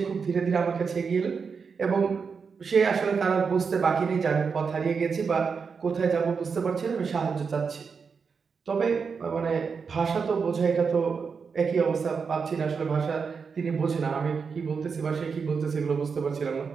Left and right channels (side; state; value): left; quieter; 5.6 dB